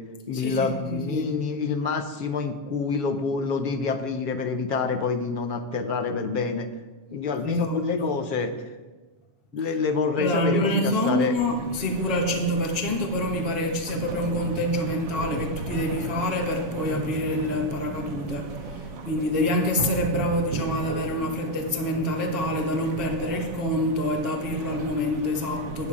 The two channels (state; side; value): late; left; 7.2 ms